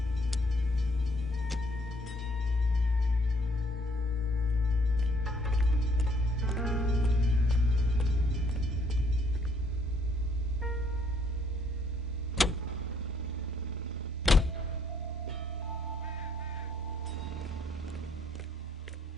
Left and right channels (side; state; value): both; normal; correlation 0.67